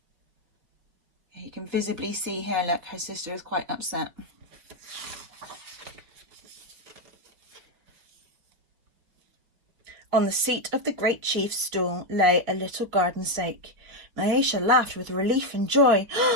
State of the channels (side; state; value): left; late; 5.7 ms